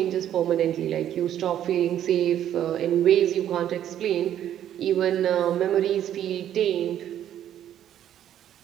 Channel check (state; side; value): quieter; left; 10.9 dB